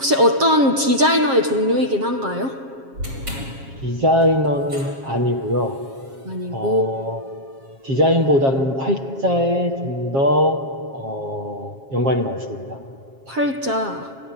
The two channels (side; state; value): left; late; 7.4 ms